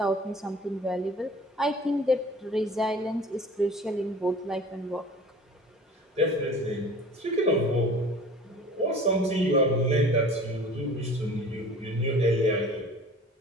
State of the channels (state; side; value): normal; both; correlation 0.44